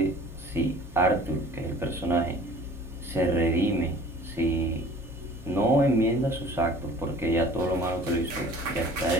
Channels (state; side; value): normal; both; correlation 0.48